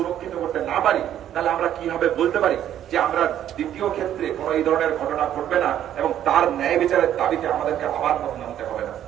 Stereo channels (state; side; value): quieter; left; 11.0 dB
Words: করতে না পারি, তাহলে আমরা কিভাবে বলতে পারি যে আমরা দ্বিতীয় ক্ষেত্রে কোনো এই ধরনের ঘটনা ঘটবে না এবং তার ন্যায় বিচারের দাবিতে আমাদেরকে আবার পথ নামতে হবে না।